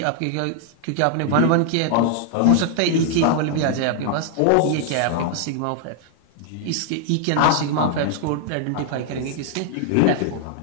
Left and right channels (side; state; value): both; different; correlation 0.00